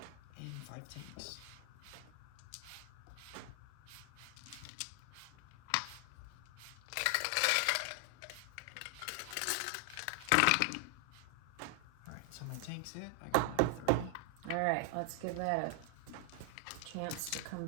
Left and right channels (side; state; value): both; different; correlation 0.00